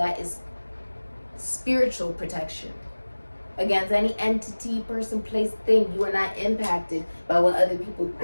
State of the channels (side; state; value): both; inverted; correlation -1.00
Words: is spiritual protection. Against any entity, person, place, thing. You are not impacted by what other people